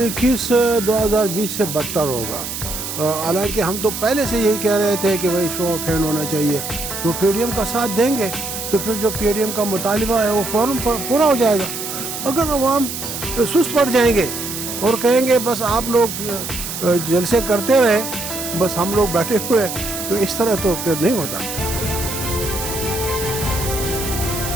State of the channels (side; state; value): right; noise; hiss, 6 dB below the sound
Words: 2020 سے بدتر ہوگا. حالانکہ ہم تو پہلے سے یہی کہہ رہے تھے کہ بھائی شو آف ہینڈ ہونا چاہیے. تو پی ڈی ایم کا ساتھ دیں گے تو پھر جو پی ڈی ایم کا مطالبہ ہے وہ فوراً پورا ہو جائے گا. اگر عوام سست پڑ جائیں گے اور کہیں گے بس آپ لوگ جلسے کرتے رہے بس ہم لوگ بیٹھے ہوئے تو اس طرح تو پھر نہیں ہوتا.